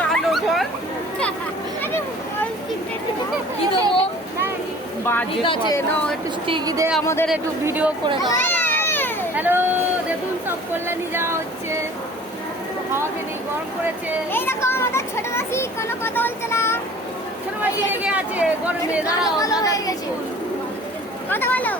কালো বল। কি দেবো? বাজে ঠিক আছে, না একটু স্টিকি দে, আমাদের একটু ভিডিও করে দাও। হ্যালো, দেখুন সব কল্যাণী যাওয়া হচ্ছে। হাওয়াকে নেই, গরম করেছে। এই দেখো আমাদের ছোট মাসি কোনো কথা বলছে না। ছোট মাসি লেগে আছে গরমে। দাঁড়াও, মাথা দিয়েছি। কথা বলো।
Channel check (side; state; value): both; normal; correlation 0.47